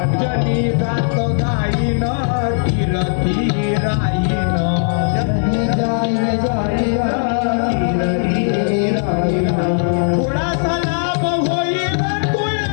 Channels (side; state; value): right; silent; 62 dB below the other